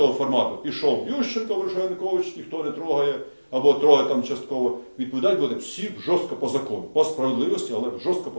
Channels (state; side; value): inverted; both; correlation -1.00